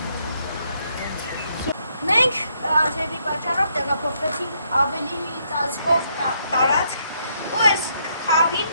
Մենք ազերվի պատճառով տեղափոխվեցինք ավելի ծածկով տարածք ու այս խաղին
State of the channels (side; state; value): both; inverted; correlation -0.74